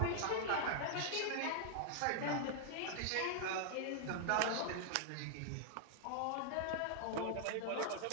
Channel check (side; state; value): both; different; correlation 0.00